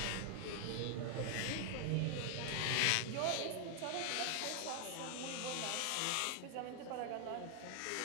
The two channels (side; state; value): both; different; correlation 0.00